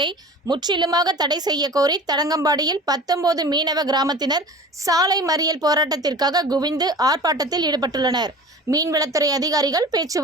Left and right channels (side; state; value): both; normal; correlation 0.39